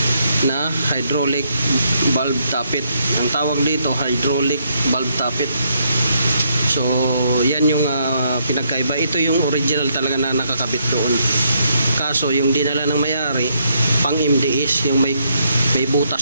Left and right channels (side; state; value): both; inverted; correlation -0.75